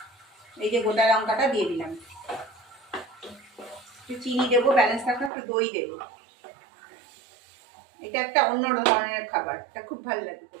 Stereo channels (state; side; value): drops out; left; at 5.3 s